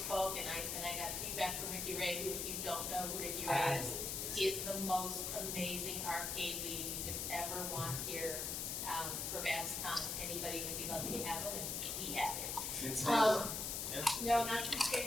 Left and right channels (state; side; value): noise; left; hiss, 2 dB below the sound